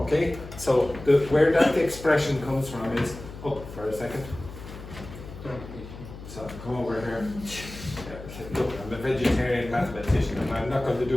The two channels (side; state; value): left; noise; hum, 13 dB below the sound